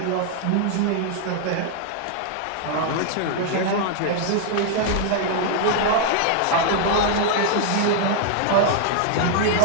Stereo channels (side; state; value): both; different; correlation 0.00